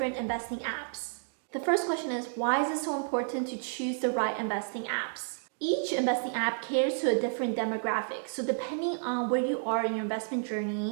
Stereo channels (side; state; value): left; silent; digital silence